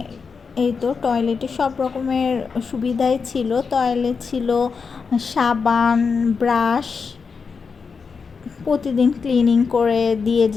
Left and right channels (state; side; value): quieter; right; 5.3 dB